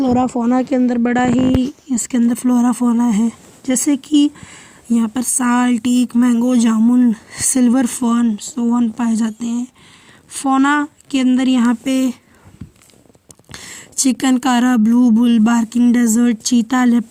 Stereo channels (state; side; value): identical; both; correlation 1.00